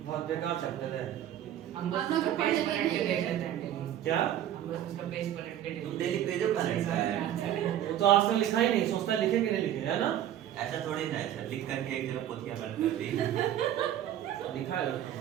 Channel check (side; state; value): left; quieter; 11.3 dB